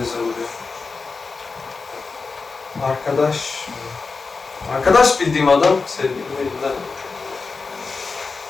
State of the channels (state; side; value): quieter; right; 4.4 dB